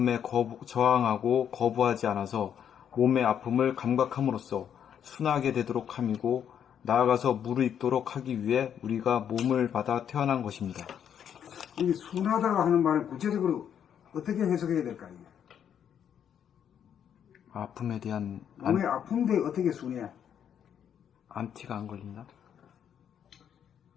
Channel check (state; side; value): quieter; right; 8.8 dB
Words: 저항하고 거부하지 않아서 몸의 아픔을 감각함으로써 순하게 되도록 함이고 나아가서 무르익도록 하기 위해 우리가 몸을 받아 태어난 것입니다. 이 순하다고 하는 말은 구체적으로 어떻게 해석해야 될까요? 아픔에 대한 몸이 아픈데 어떻게 순해? 안티가 안 걸린다?